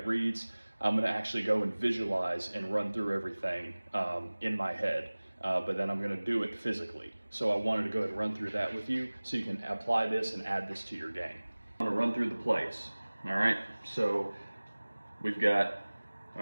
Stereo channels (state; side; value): inverted; both; correlation -1.00